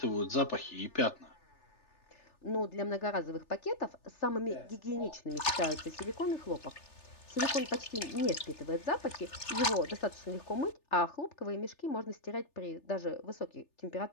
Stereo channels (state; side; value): late; right; 3.3 ms